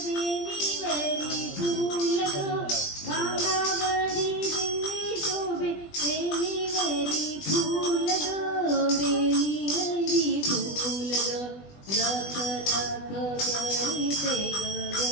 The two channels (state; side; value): late; right; 20 ms